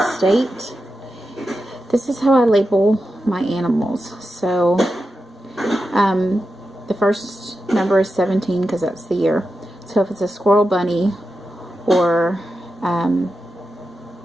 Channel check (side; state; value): both; normal; correlation 0.90